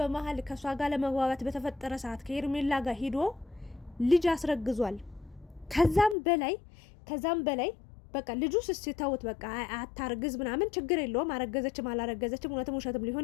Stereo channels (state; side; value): drops out; right; at 6.2 s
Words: ከሷ ጋር ለመግባባት በተፈጠረ ሰዓት ከሄርሜላ ጋር ሂዶ ልጅ አስረግዟል። ከዛም በላይ በቃ ልጁ ስስተውት በቃ አታርግዝ ምናምን ችግር የለውም አረገዘችም አላረገዘችም እውነትም ውሸትም